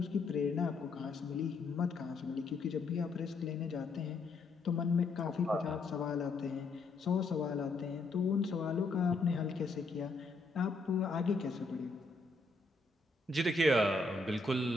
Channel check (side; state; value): right; quieter; 3.4 dB